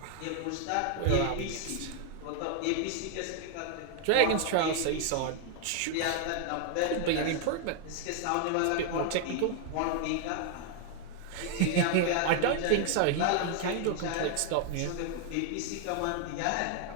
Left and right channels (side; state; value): both; different; correlation 0.00